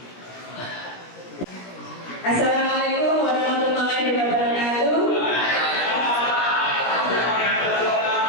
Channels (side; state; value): right; late; 17 ms